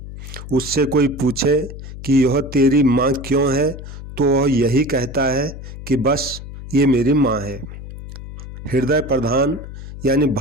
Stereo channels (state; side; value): noise; left; hum, 12 dB below the sound